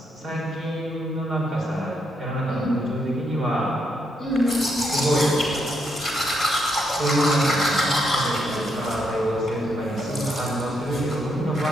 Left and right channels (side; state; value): both; normal; correlation 0.78